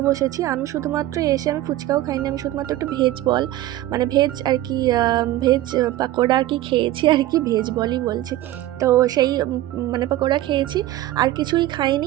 বসেছি। আমি শুধুমাত্র এসে আমি ফুচকাও খাইনি, আমি শুধুমাত্র একটু ভেজ বল, মানে ভেজ আর কি, ভেজ পাকোড়া আর কি খেয়েছি আর কি, ভেজ বলই বলছি। তো সেই মানে পাকোড়া খেয়েছি, আর কিছুই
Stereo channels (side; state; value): left; quieter; 14.9 dB